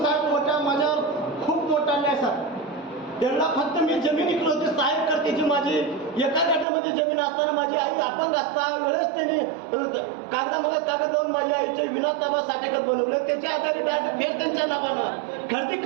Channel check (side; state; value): left; drops out; at 6.7 s